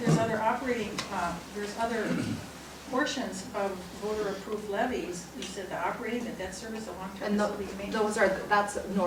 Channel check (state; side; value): identical; both; correlation 1.00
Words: there's other operating, there's other portions of voter-approved levies. You said the operating, the debt service, the long-term And facilities maintenance. that's